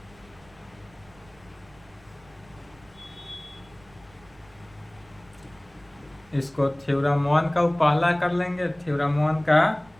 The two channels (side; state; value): right; noise; rumble, 27 dB below the sound